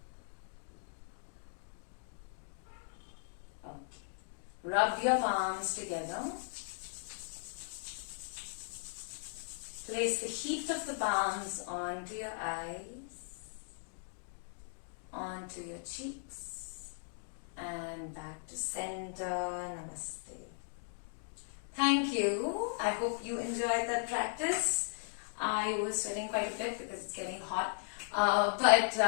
Okay. Rub your palms together. Place the heat of the palms onto your eyes, onto your cheeks, and back to center. Namaste. Thank you. I hope you enjoyed that practice. I was sweating quite a bit because it's getting hot.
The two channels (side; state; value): right; silent; digital silence